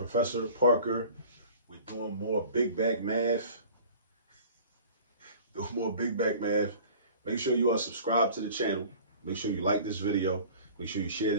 Parker. We're doing more big back math. Doing more big back math. Make sure you are subscribed to the channel. Make sure you like this video. Make sure you share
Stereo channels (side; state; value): both; inverted; correlation -0.45